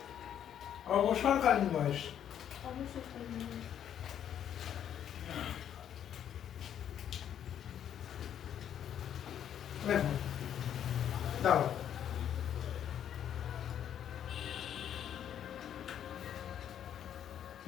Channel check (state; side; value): quieter; right; 9.7 dB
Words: অবসরকালীন বয়স। দেখো দাও,